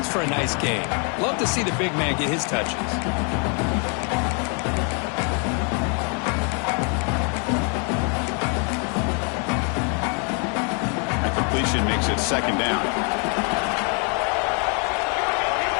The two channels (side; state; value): right; quieter; 37.7 dB